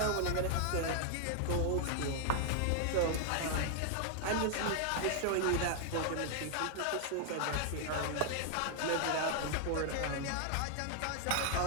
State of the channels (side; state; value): both; different; correlation 0.00